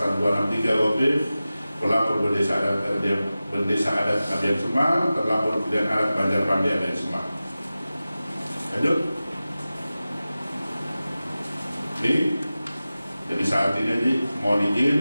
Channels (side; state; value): both; inverted; correlation -0.96